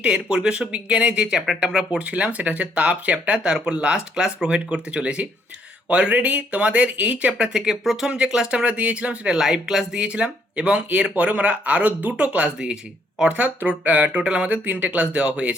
পরিবেশ বিজ্ঞানে যে চ্যাপ্টারটা আমরা পড়ছিলাম সেটা হচ্ছে তাপ চ্যাপ্টার, তার উপর লাস্ট ক্লাস প্রোভাইড করতে চলেছি। অলরেডি তোমাদের এই চ্যাপ্টার থেকে প্রথম যে ক্লাসটা আমরা দিয়েছিলাম সেটা লাইভ ক্লাস দিয়েছিলাম, এবং এরপরে আমরা আরও দুটো ক্লাস দিয়েছি, অর্থাৎ টোটাল আমাদের 3টে ক্লাস দেওয়া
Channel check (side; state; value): both; normal; correlation 0.69